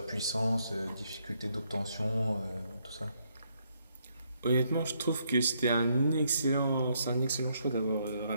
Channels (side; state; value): both; inverted; correlation -0.74